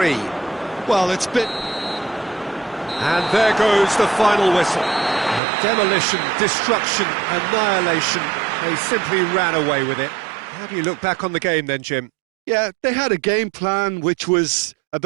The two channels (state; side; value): drops out; left; at 5.4 s